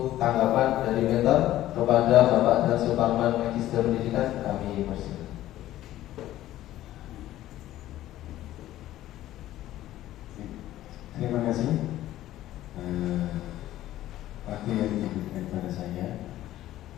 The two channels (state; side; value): quieter; right; 14.1 dB